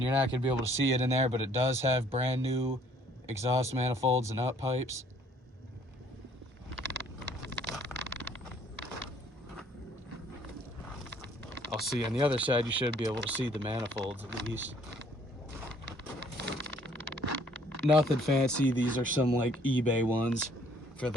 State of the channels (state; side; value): normal; both; correlation 0.61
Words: you're not going to be able to see it in there, but it does have brand new exhaust manifolds and up pipes. I'll see on the other side, you should be able to see the manifolds at least. Nothing fancy. These are some like eBay ones for